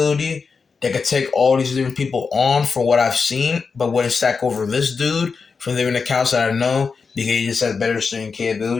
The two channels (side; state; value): right; quieter; 5.1 dB